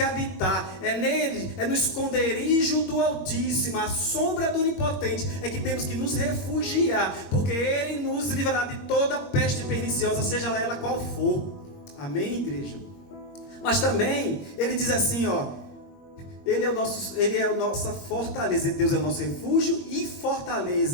habitar. É nele, é no esconderijo do Altíssimo, a sombra do Onipotente, é que temos que nos refugiar, porque Ele nos livrará de toda peste perniciosa, seja ela qual for. Amém, igreja? Mas também, ele diz assim, Ele é a nossa fortaleza. Deus é o nosso refúgio e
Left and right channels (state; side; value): late; right; 21 ms